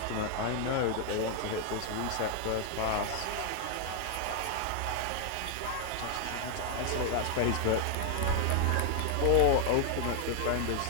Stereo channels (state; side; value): different; both; correlation 0.00